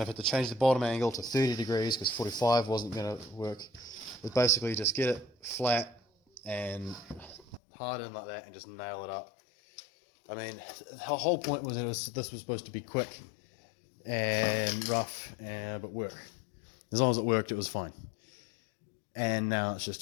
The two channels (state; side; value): drops out; right; at 7.6 s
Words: had to change the bottom angle to 30 degrees because 45 wasn't going to work, is basically just get it flat and hard in like that and just nail it up. I mean, the whole point was this was supposed to be quick and rough, but work. As long as it worked, it was fine. And now it's just